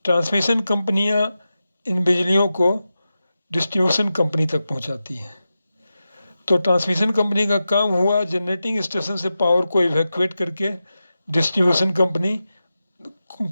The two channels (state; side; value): inverted; both; correlation -0.92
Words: ट्रांसमिशन कंपनियां इन बिजलियों को डिस्ट्रीब्यूशन कंपनी तक पहुंचाती हैं। तो ट्रांसमिशन कंपनी का काम हुआ जनरेटिंग स्टेशन से पावर को इवैक्यूएट करके डिस्ट्रीब्यूशन कंपनी